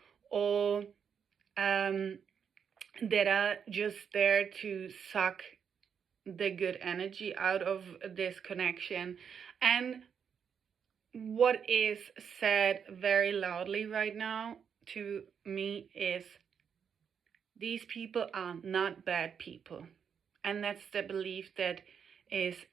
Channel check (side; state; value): left; quieter; 7.2 dB